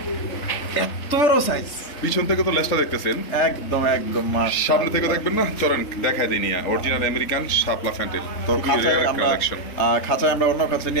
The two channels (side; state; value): right; late; 3.4 ms